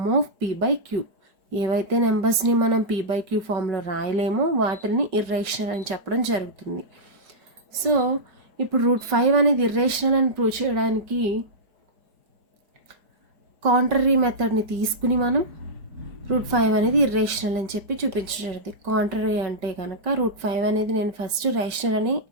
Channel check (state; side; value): late; left; 4.9 ms